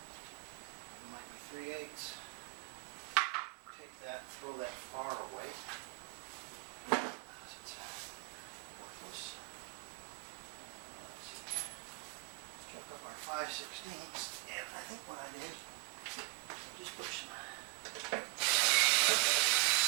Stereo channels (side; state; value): left; quieter; 31.7 dB